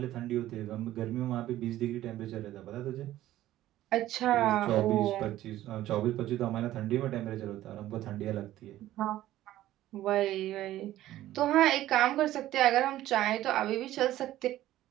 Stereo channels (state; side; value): quieter; left; 14.2 dB